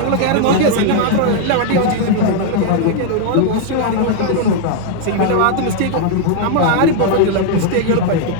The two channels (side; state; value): both; different; correlation 0.00